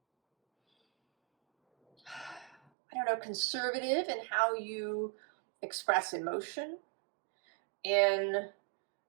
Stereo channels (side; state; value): left; drops out; at 2.6 s